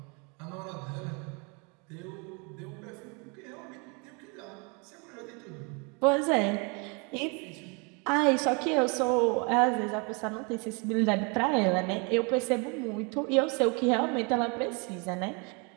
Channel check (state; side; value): quieter; left; 32.2 dB